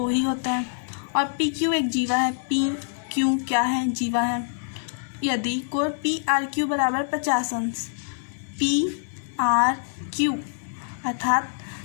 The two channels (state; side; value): silent; right; digital silence